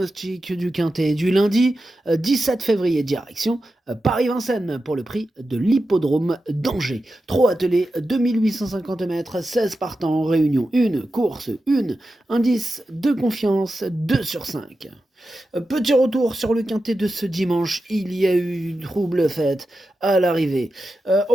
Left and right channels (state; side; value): normal; both; correlation 0.91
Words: du quintet du lundi 17 février, direction Paris-Vincennes pour le prix de l'hippodrome d'Angers. Trop attelé, 2850 mètres, 16 partants, réunion 1, course 1, indice de confiance 2 sur 5. Petit retour sur le quintet de ce dimanche, il y a eu une trouble faite à l'arrivée.